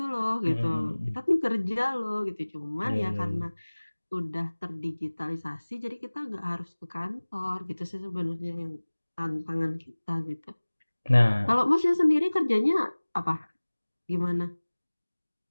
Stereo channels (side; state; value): both; inverted; correlation -1.00